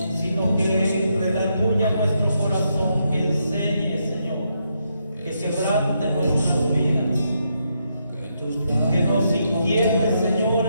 sino que redarguya nuestro corazón, que enseñe, Señor, que quebrante nuestras vidas, que nos inquiete, Señor,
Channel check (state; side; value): inverted; both; correlation -0.79